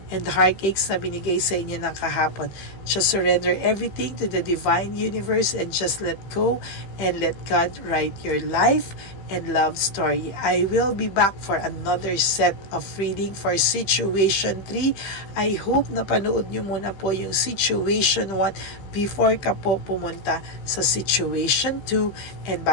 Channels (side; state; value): right; late; 15 ms